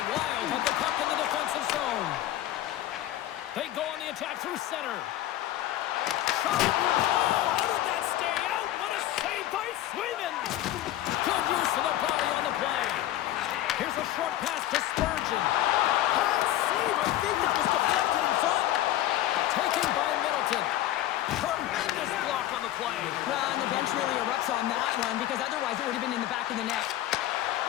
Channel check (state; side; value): quieter; right; 13.8 dB